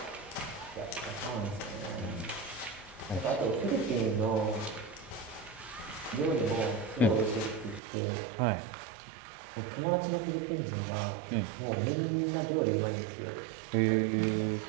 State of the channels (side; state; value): left; drops out; at 7.8 s